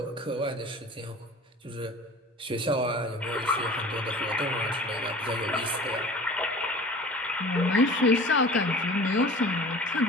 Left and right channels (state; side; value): normal; both; correlation 0.41